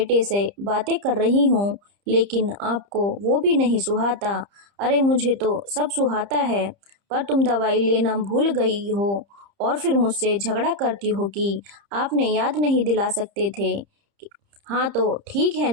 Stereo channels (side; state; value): left; late; 30 ms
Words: से बातें कर रही हूँ, लेकिन आपको वो भी नहीं सुहाता। अरे मुझे तो सब सुहाता है, पर तुम दवाई लेना भूल गई हो और फिर मुझसे झगड़ा करती हो कि आपने याद नहीं दिला सकते थे। हाँ तो ठीक है